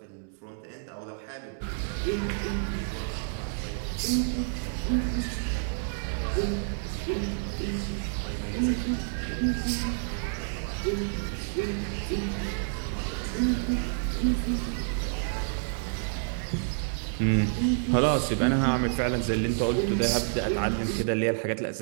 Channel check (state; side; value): silent; left; digital silence